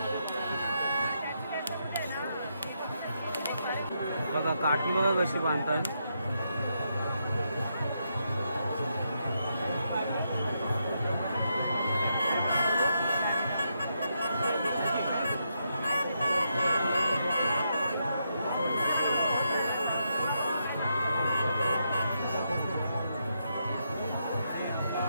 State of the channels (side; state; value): both; inverted; correlation -0.81